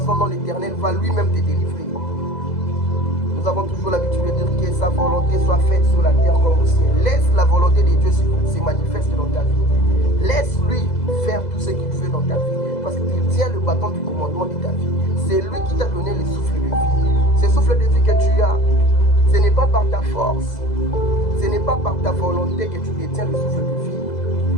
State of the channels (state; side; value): late; right; 2.0 ms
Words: dont l'Éternel va lui-même te délivrer. Nous avons toujours l'habitude de dire que sa volonté soit faite sur la terre comme au ciel. Laisse la volonté de Dieu se manifester dans ta vie. Laisse-lui faire tout ce qu'il veut dans ta vie. Parce qu'il tient le bâton du commandement de ta vie. C'est lui qui t'a donné le souffle de vie. Ce souffle de vie que tu as, ce n'est pas par ta force. Ce n'est pas par ta volonté que tu détiens le souffle de vie.